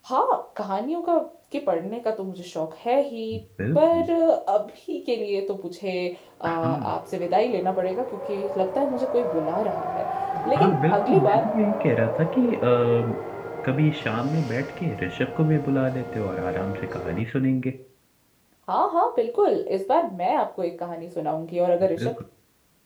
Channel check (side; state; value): both; identical; correlation 1.00